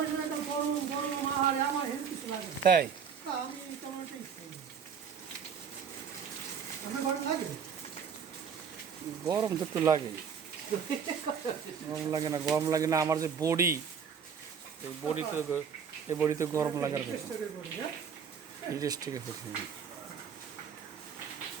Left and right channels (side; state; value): left; quieter; 6.9 dB